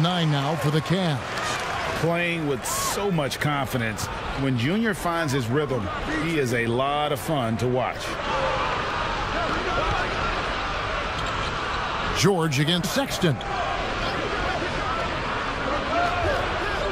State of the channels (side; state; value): both; identical; correlation 1.00